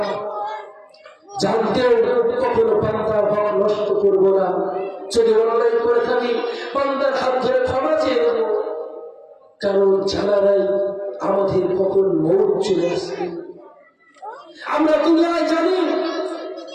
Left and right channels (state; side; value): identical; both; correlation 1.00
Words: জানতেও কখনো বান্দার হক নষ্ট করবো না। যদি অন্যায় করে থাকি, বান্দার হাত ধরে ক্ষমা চেয়ে দেব, কারণ জানা নাই আমাদের কখন মৌত চলে আসবে। আমরা দুনিয়ায় জানি,